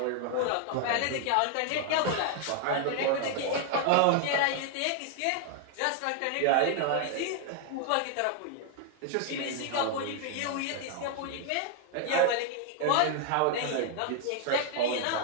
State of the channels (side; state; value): both; different; correlation 0.00